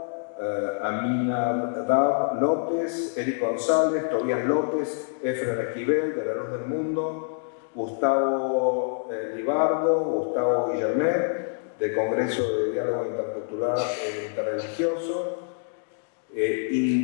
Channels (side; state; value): right; silent; digital silence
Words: Amina Dab López, Eric González, Tobías López, Efren Esquivel, de La Luz del Mundo, Gustavo Libardo, Gustavo Guillermet, del Congreso de Diálogo Intercultural e Interreligioso,